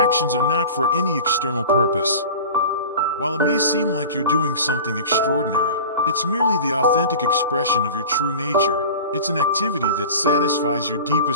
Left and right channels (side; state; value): both; inverted; correlation -0.36